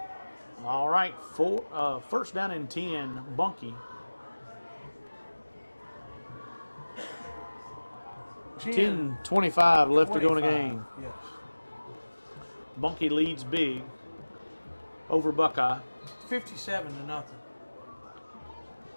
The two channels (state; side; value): inverted; both; correlation -1.00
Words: All right, first down and 10, Bunkie. 10:25 left to go in the game. Yes. Bunkie leads big over Buckeye. 57-0.